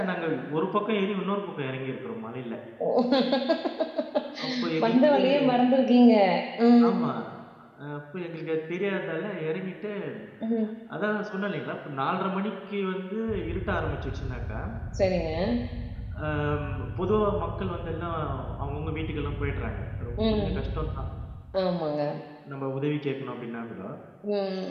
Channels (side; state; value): both; identical; correlation 1.00